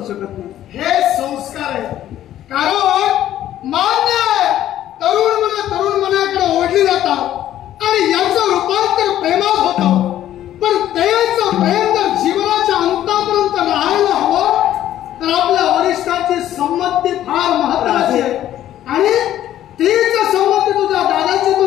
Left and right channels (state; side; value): quieter; right; 12.3 dB